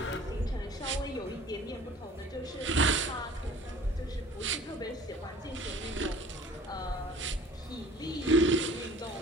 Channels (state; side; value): normal; both; correlation 0.47